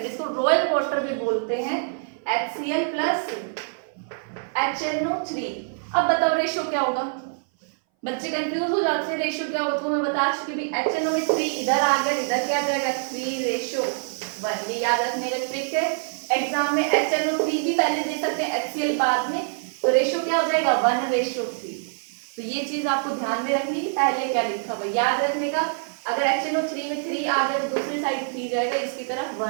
इसको रॉयल वाटर भी बोलते हैं, HCl प्लस HNO3। अब बताओ रेशियो क्या होगा, बच्चे कंफ्यूज हो जाते हैं रेशियो क्या होगा, तो मैं बता चुकी भी HNO में 3 इधर आ गया, इधर क्या जाएगा 3:1। ये याद रखने का ट्रिक है। एग्जाम में HNO3 भी पहले दे सकते हैं, HCl बाद में, तो रेशियो क्या हो जाएगा 1:3। तो ये चीज आपको ध्यान में रखनी है, पहले क्या लिखा हुआ याद रखने का। अगर HNO3 में 3 आ गया तो दूसरी साइड 3 जाएगा, इसकी तरफ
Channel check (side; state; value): left; silent; 60 dB below the other